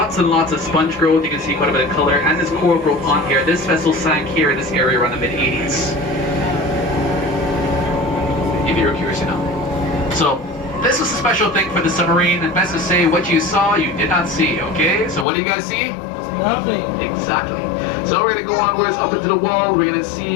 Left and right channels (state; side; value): drops out; right; at 15.2 s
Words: and lots of sponge growth, you can see quite a bit of color, and this coral growth on here. This vessel sank here in this area around the mid-80s. If you're curious to know. So, this was a special thing for the submarine, and best to say what you saw, you did not see, okay? So what do you guys see? Nothing. Exactly. So we're gonna go onwards up into the wall, we're gonna